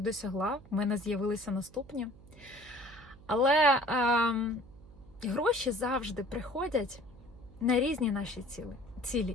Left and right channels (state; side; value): noise; right; hum, 22 dB below the sound